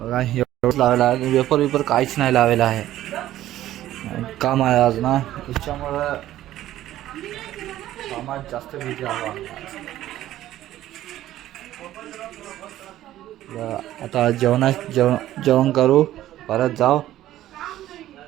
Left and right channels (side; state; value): left; quieter; 13.7 dB